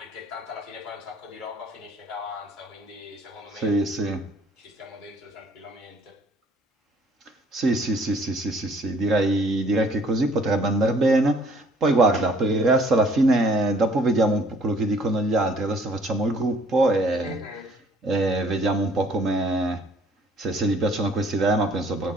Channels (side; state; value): both; normal; correlation 0.59